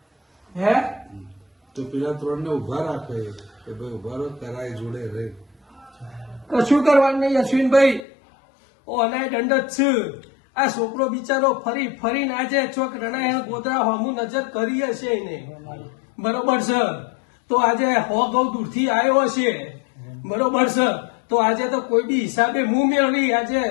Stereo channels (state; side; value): drops out; right; at 8.1 s